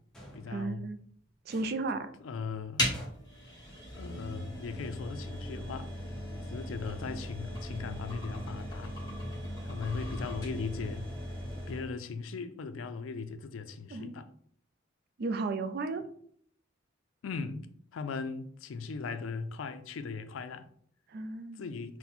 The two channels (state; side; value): normal; both; correlation 0.47